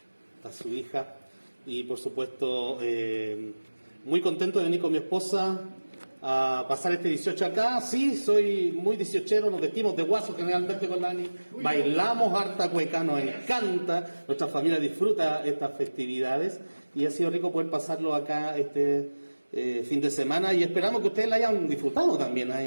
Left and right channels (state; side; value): inverted; both; correlation -1.00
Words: a su hija, y por supuesto muy contento de venir con mi esposa a pasar este 18 acá. Sí, soy muy 18ero, nos vestimos de guaso generalmente con Dani, bailamos harta cueca, nos encanta, nuestra familia disfruta estas festividades y ha sido rico poder pasarlo acá este fin de semana, y esperamos que ustedes la hayan disfrutado también,